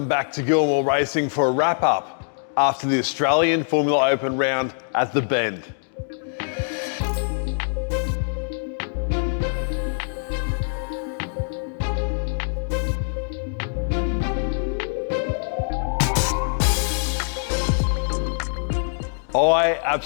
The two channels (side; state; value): right; silent; digital silence